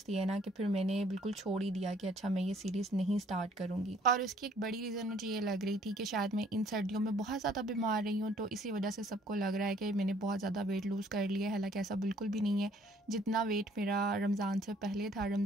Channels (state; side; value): normal; both; correlation 0.60